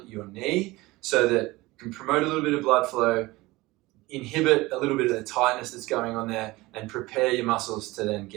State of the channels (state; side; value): quieter; left; 20.5 dB